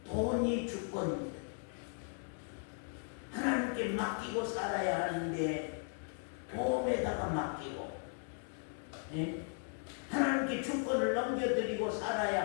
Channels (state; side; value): silent; right; 53 dB below the other